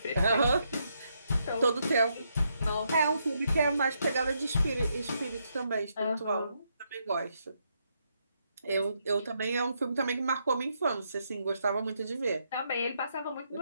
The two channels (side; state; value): both; inverted; correlation -0.78